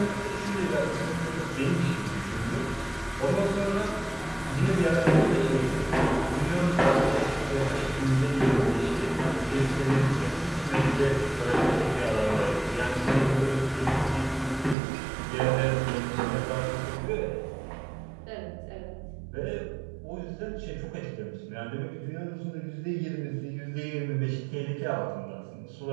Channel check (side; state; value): left; drops out; at 14.8 s